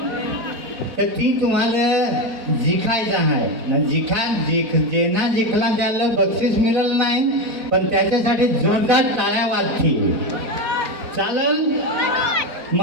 तर ती तुम्हाला जिखायचं आहे ना. जेना जिंकला त्याला बक्षीस मिळेल नाही, पण त्याच्यासाठी जोरदार टाळ्या वाजतील. चालेल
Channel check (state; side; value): late; left; 4.4 ms